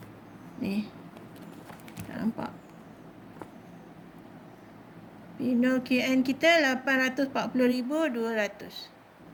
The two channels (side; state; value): both; identical; correlation 1.00